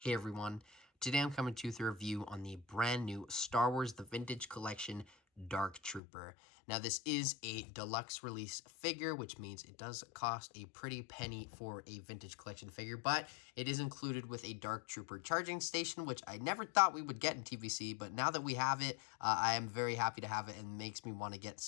Hey everyone, today I'm coming to you with a review on the brand new Star Wars The Vintage Collection Dark Trooper. Now this is a deluxe release figure, which means it does cost a pretty penny for a vintage collection figure, but it is included with a Dark Trooper charging station, which I never thought we would get in TVC, but now that we have it, I am very happy to have it and makes me want to get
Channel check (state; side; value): drops out; right; at 6.0 s